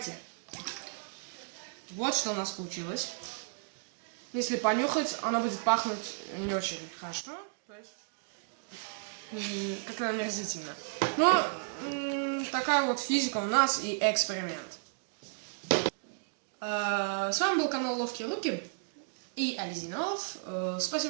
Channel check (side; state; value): left; silent; digital silence